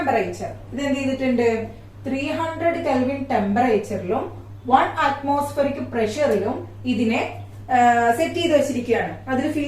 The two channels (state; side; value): identical; both; correlation 1.00